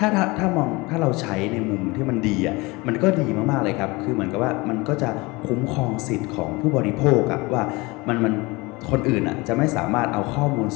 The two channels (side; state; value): right; quieter; 24.1 dB